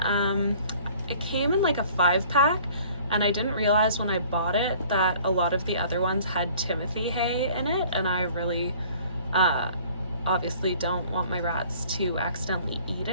It came in like a 5-pack, and I didn't realize when I bought it that a lot of the other ones had Timothy hay in it, and I really obviously don't want my rats to accidentally eat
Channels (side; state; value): both; inverted; correlation -0.52